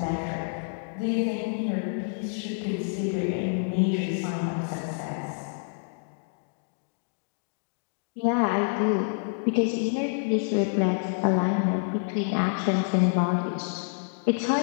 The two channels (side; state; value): right; silent; digital silence